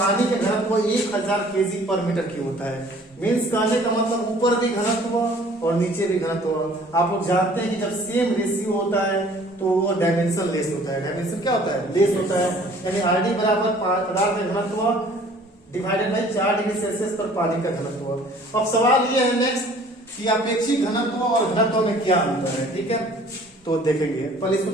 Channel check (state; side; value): normal; both; correlation 0.53